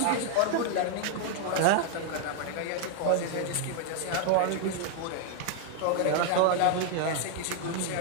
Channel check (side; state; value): both; different; correlation 0.00